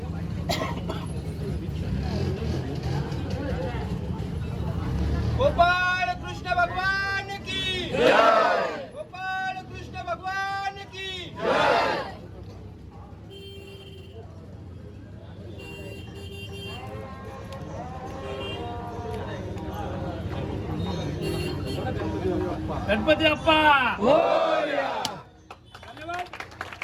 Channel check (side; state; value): both; identical; correlation 1.00